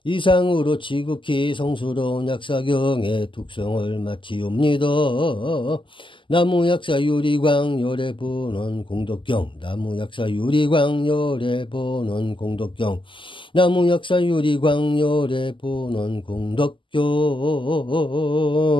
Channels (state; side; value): late; right; 0.25 ms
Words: 이상으로 지극히 성스러운 약사경의 독성을 마치옵니다. 나무 약사 유리광 열의 본원 공덕경. 나무 약사 유리광 열의 본원 공덕경. 나무 약사 유리광 열의 본원 공덕경.